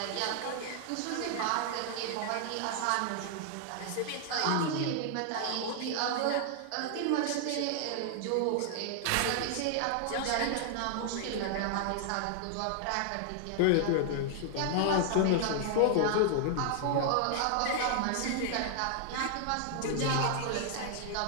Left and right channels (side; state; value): both; different; correlation 0.00